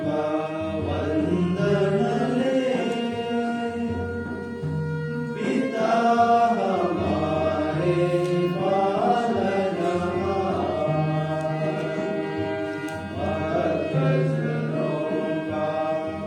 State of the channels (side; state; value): both; identical; correlation 1.00